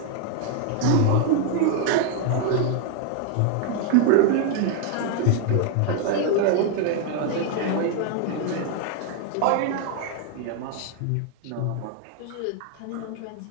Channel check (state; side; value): different; both; correlation 0.00